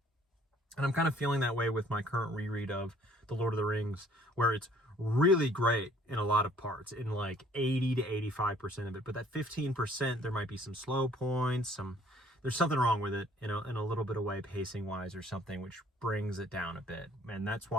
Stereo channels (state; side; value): normal; both; correlation 0.58